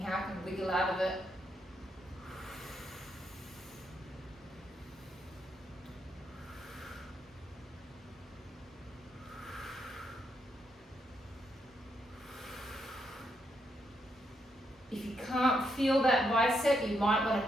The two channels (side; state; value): both; normal; correlation 0.79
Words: how can I wiggle out of it? If you can't feel that bicep, you might want